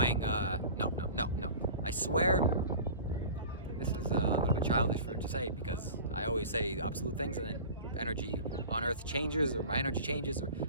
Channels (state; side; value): inverted; both; correlation -0.38